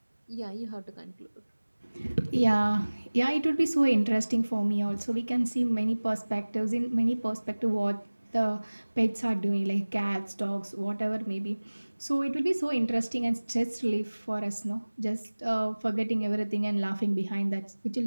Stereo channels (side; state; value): both; inverted; correlation -1.00